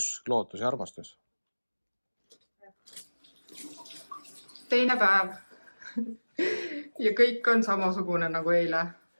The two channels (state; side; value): inverted; both; correlation -1.00